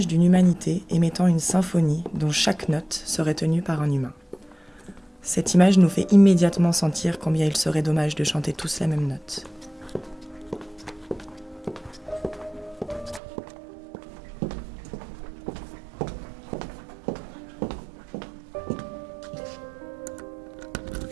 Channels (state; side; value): drops out; left; at 13.2 s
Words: d'une humanité émettant une symphonie dont chaque note serait tenue par un humain. Cette image nous fait immédiatement sentir combien il serait dommage de chanter tous la même note.